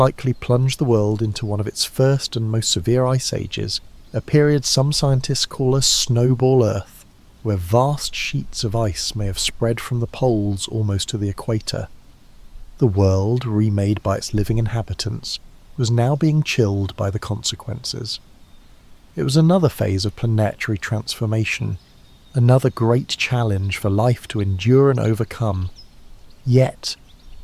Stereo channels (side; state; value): both; identical; correlation 1.00